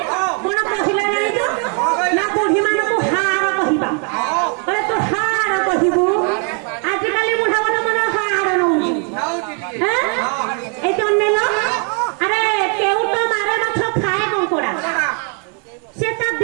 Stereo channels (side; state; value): left; quieter; 39.5 dB